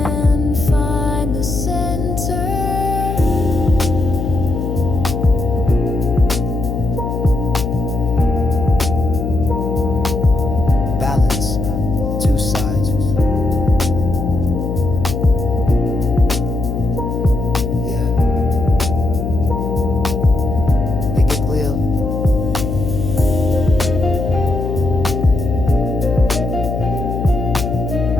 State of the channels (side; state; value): left; noise; hum, 3 dB below the sound